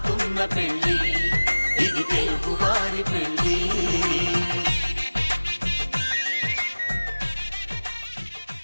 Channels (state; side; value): inverted; both; correlation -1.00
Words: పెళ్ళి ఇది తెలుగువారి పెళ్ళి